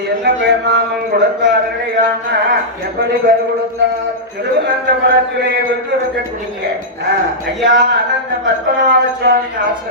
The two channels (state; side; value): normal; both; correlation -0.11